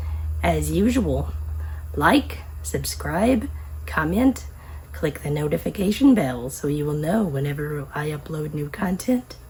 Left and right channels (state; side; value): identical; both; correlation 1.00